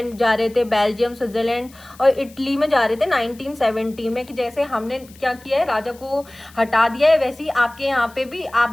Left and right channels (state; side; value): noise; left; hiss, 24 dB below the sound